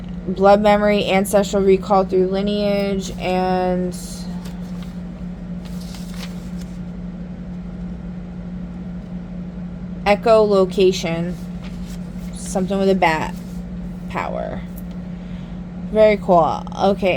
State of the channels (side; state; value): both; identical; correlation 1.00